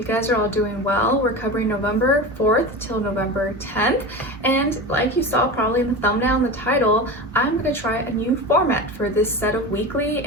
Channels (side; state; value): both; normal; correlation 0.27